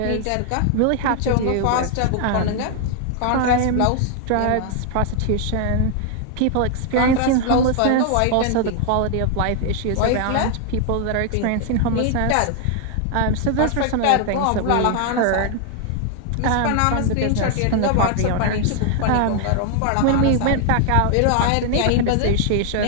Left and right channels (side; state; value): both; different; correlation 0.00